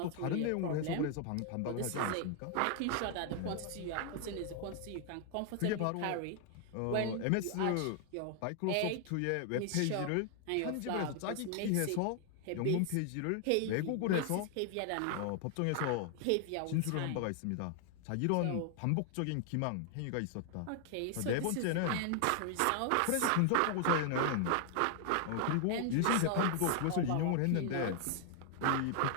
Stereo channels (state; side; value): different; both; correlation 0.00